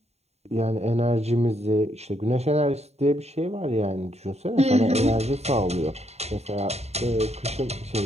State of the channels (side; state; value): left; late; 0.31 ms